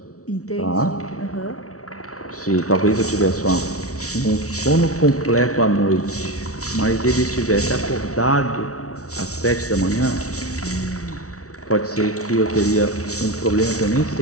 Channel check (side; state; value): right; late; 0.65 ms